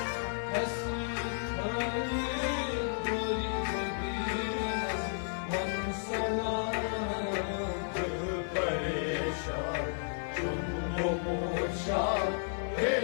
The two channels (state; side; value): silent; right; 56 dB below the other